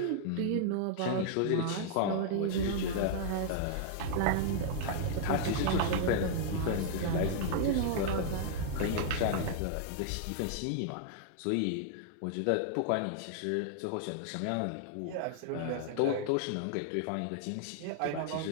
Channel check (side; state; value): both; different; correlation -0.01